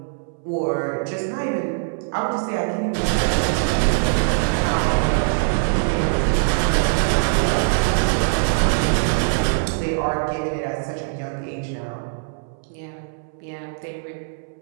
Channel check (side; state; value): left; silent; 63 dB below the other